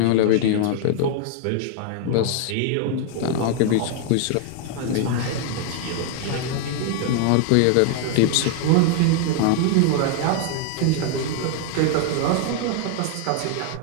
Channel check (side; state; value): both; different; correlation 0.00